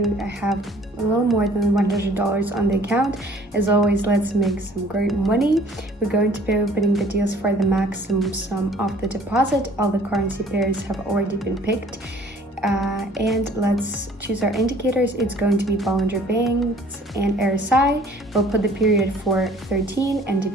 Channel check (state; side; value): normal; both; correlation 0.54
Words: I have a little more than $100 on the account. As always, let's make some great money. We're going to be opening the deals for the maximum sum of the deposit. All the currency pairs have already been picked. And let's choose our indicators. It's going to be Bollinger Bands and RSI. We'll put the period for 13 and